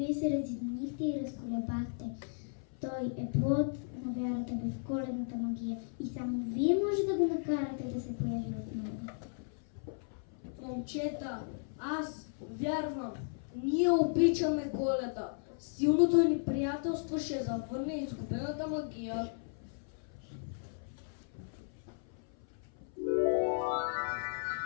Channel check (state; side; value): silent; right; 54 dB below the other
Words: се разединихте и разколебахте. Той е плод на вярата ви в коледната магия и само вие може да го накарате да се появи отново. Момчета, аз вярвам. Ние обичаме Коледа. Силното ни приятелство ще завърне изгубената магия.